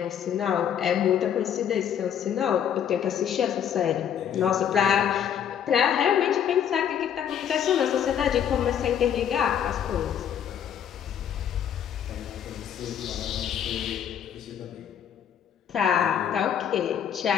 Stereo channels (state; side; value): quieter; right; 9.0 dB